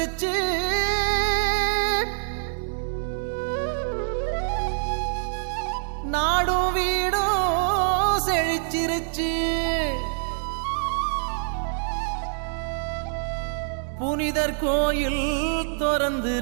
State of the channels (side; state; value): left; silent; digital silence